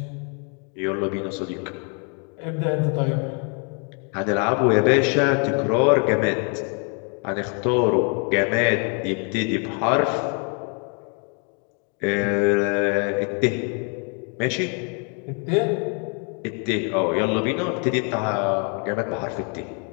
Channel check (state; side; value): quieter; right; 38.8 dB